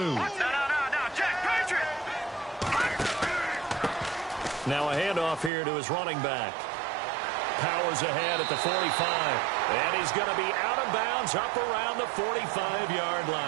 Now a handoff here to his running back. Powers ahead at the 45. And he's going to be out of bounds up around the 45-yard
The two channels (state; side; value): drops out; left; at 5.5 s